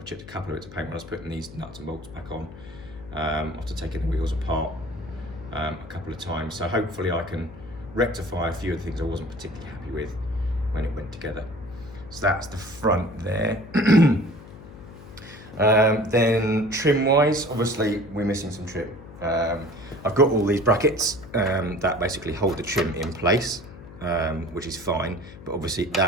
chipped a couple of bits of paint when I was putting these nuts and bolts back on, after taking the wheels apart a couple of times. So hopefully I can rectify a few of the things I wasn't particularly happy with when it went together. So that's the front there. Then trim wise, obviously we're missing some trim. I've got all these brackets that basically hold the trim in place, which is fine, but obviously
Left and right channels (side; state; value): left; noise; hum, 17 dB below the sound